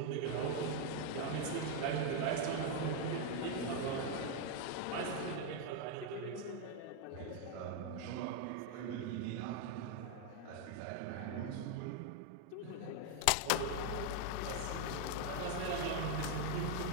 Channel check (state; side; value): different; both; correlation 0.00